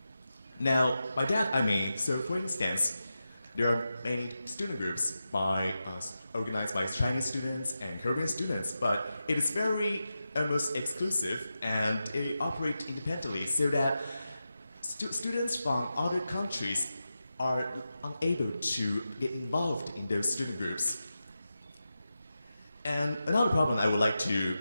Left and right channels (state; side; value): inverted; both; correlation -0.91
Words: Now, by that I mean, so for instance, there are many student groups organized by Chinese students and Korean students, but it is very almost exclusive and it operates independently, so that students from other countries are unable to get involved in those student groups. And another problem I would like to